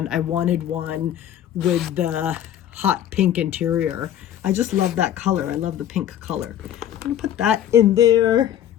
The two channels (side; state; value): right; quieter; 10.8 dB